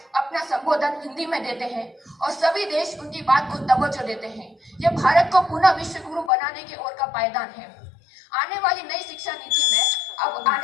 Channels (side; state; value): right; drops out; at 6.3 s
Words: संबोधन हिंदी में देते हैं और सभी देश उनकी बात को तवज्जो देते हैं। यह भारत को पुनः विश्व गुरु बनाने की ओर का पायदान है। आने वाली नई शिक्षा नीति में अब